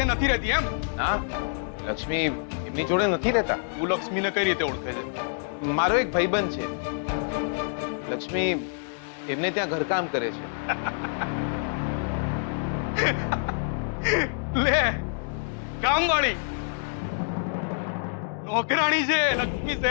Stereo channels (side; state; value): right; silent; digital silence